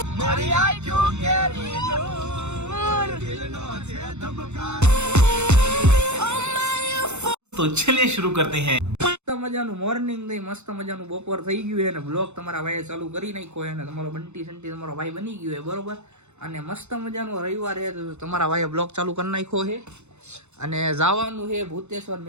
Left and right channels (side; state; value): left; late; 0.82 ms